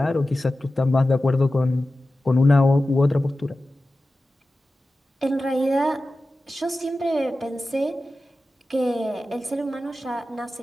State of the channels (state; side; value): normal; both; correlation 0.94